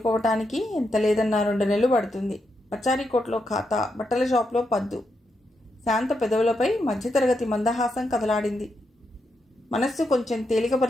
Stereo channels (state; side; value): normal; both; correlation 0.83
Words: ఎంత లేదన్నా 2 నెలలు పడుతుంది. పచారీకోట్లో ఖాతా, బట్టల షాప్లో పద్దు. శాంత పెదవులపై మధ్యతరగతి మందహాసం కదలాడింది. మనస్సు కొంచెం